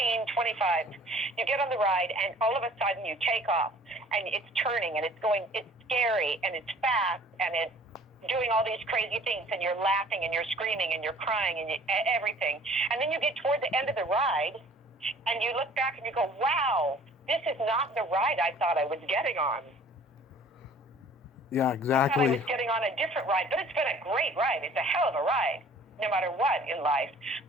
25, you get on the ride and all of a sudden you take off and it's turning and it's scary and it's fast and it's doing all these crazy things and you're laughing and you're screaming and you're crying and everything. And then you get toward the end of the ride and you look back and you go, wow, this is not the ride I thought I was getting on. Yeah, exactly. I thought I was getting on a different ride, but it's been a great ride. It's a hell of a ride, no matter what in life.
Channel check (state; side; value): normal; both; correlation 0.51